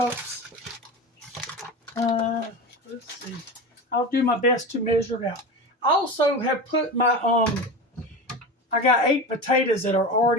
Let's see. I'll do my best to measure it out. I also have put my I got 8 potatoes that are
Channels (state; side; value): normal; both; correlation 0.27